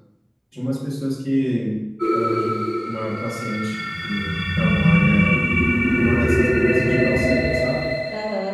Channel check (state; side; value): identical; both; correlation 1.00